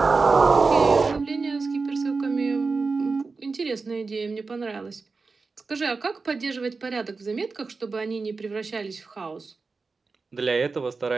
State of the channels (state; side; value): quieter; left; 4.3 dB